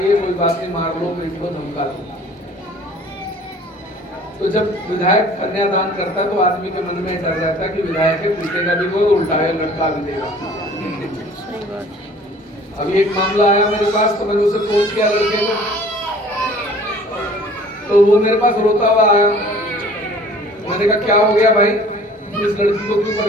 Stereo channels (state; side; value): normal; both; correlation 0.50